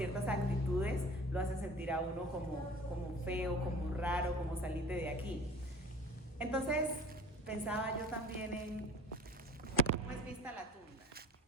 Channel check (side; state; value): both; normal; correlation 0.44